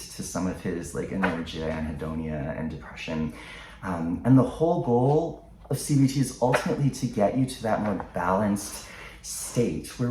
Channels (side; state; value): both; identical; correlation 1.00